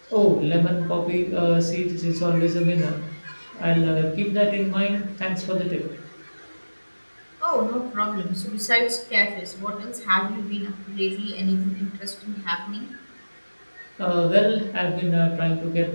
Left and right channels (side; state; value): both; inverted; correlation -1.00